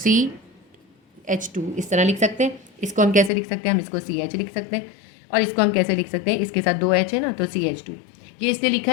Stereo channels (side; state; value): right; drops out; at 3.3 s